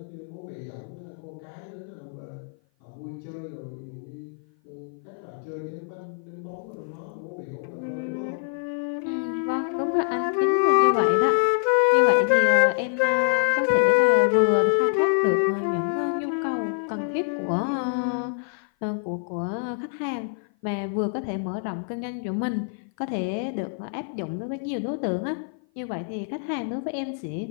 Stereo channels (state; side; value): silent; right; 56 dB below the other